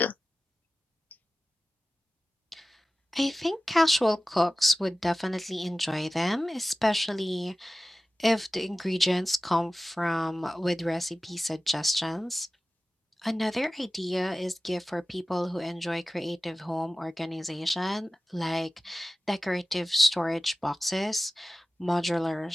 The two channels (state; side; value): normal; both; correlation 0.96